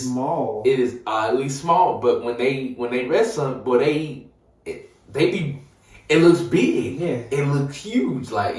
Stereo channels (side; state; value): both; identical; correlation 1.00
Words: small. It is oddly small. But when they wrestle, boy, it looks big. Yeah. It looks huge. Like,